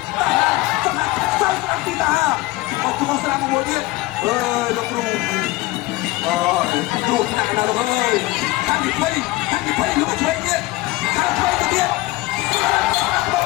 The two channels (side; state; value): right; quieter; 19.9 dB